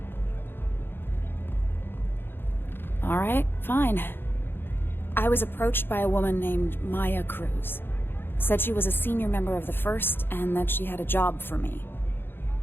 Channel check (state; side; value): late; right; 0.10 ms